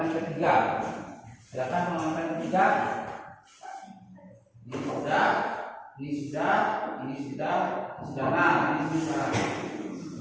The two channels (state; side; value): identical; both; correlation 1.00